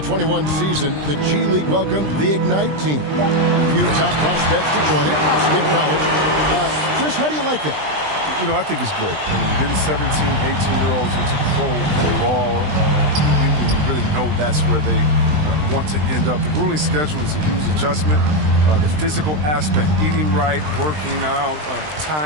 season, the G League welcomed the Ignite team. A few top prospects to join it. Skip college. Chris, how do you like that? You know, I think it's great. I mean, getting 17, 18-year-olds into pro ball, when you really know that's where they want to end up. The grueling schedule is a huge adjustment. The physical aspect, eating right, working out,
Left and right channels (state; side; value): late; left; 20 ms